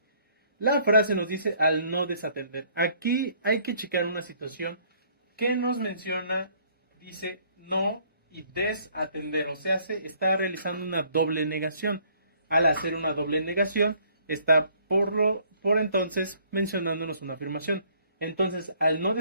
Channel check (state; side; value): inverted; both; correlation -0.62